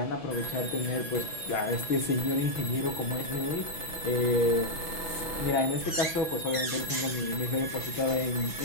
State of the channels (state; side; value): late; right; 6.1 ms